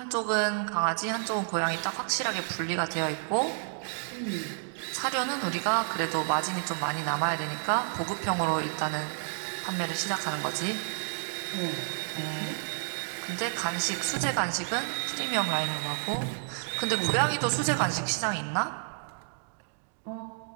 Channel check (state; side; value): silent; left; digital silence